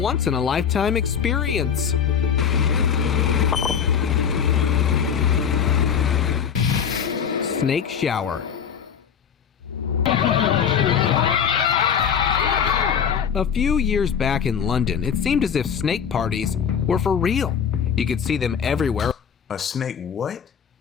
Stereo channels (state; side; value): quieter; right; 7.6 dB